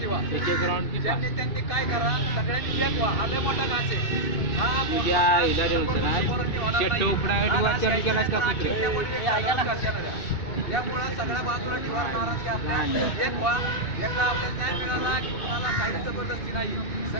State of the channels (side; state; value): right; late; 2.7 ms